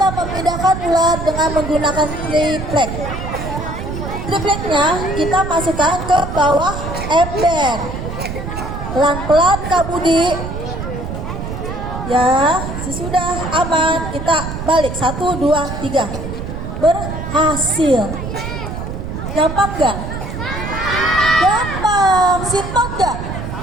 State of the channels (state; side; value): noise; right; rumble, 6 dB below the sound